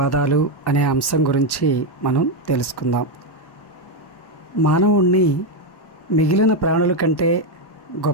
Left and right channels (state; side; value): late; right; 1.1 ms